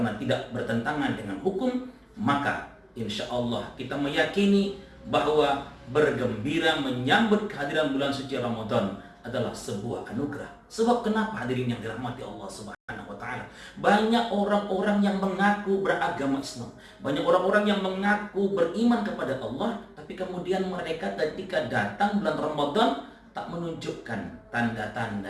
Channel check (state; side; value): identical; both; correlation 1.00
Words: tidak bertentangan dengan hukum, maka insya Allah kita meyakini bahwa bergembira menyambut kehadiran bulan suci Ramadan adalah sebuah anugerah. Sebab kenapa hadirin yang dirahmati Allah Subhanahu wa taala? Banyak orang-orang yang mengaku beragama Islam, banyak orang-orang yang mengaku beriman kepada Allah, tapi kemudian mereka ketika datang bulan Ramadan tak menunjukkan